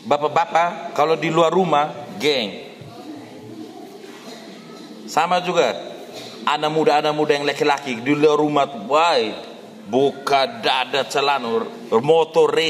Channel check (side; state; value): both; identical; correlation 1.00